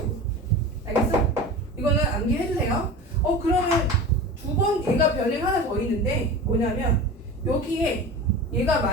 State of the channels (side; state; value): both; normal; correlation 0.32